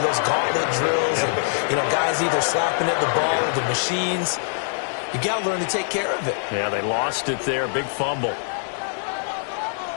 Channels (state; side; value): silent; right; digital silence